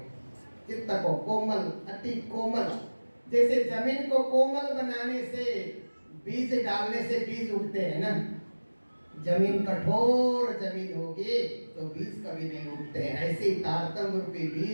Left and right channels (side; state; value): both; inverted; correlation -1.00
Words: चित्त को कोमल, अति कोमल, जैसे जमीन को कोमल बनाने से, बीज डालने से बीज उगते हैं ना। जमीन कठोर जमीन होगी तो बीज कभी नहीं उगते हैं। ऐसे ही तारतम्य रूपी